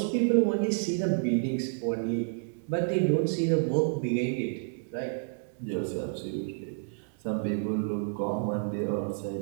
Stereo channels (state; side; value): silent; left; digital silence